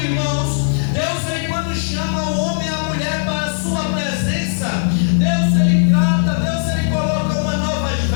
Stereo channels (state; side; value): silent; right; digital silence